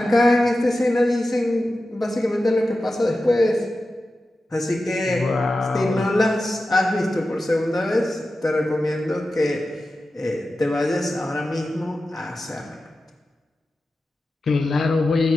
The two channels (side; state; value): both; normal; correlation 0.93